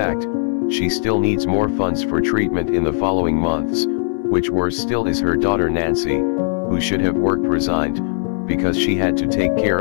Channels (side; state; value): right; silent; digital silence